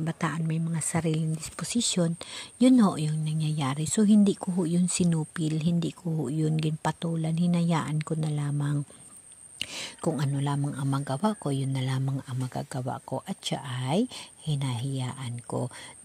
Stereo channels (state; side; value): identical; both; correlation 1.00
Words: may mga sariling disposisyon, yun ho yung nangyayari. So, hindi ko ho yun sinupil, hindi ko ho yun ginpatulan, hinayaan ko na lamang. Kung ano lamang ang magawa ko, yun na lamang ang magagawa ko, at siya ay hinahiyaan ko.